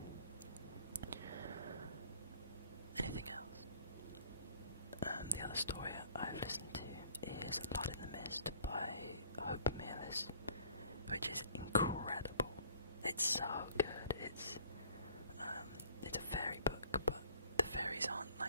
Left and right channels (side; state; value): both; inverted; correlation -0.56